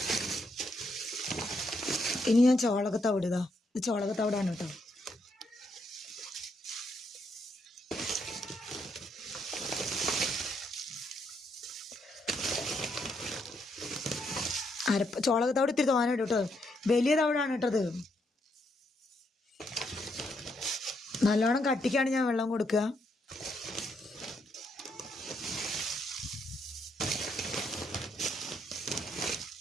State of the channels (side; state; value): both; normal; correlation 0.76